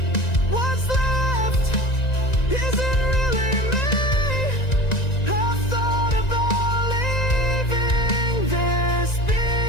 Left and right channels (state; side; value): late; right; 1.9 ms